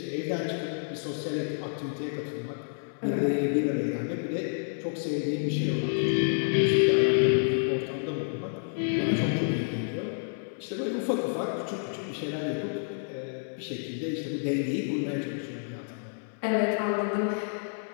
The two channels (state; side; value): silent; right; digital silence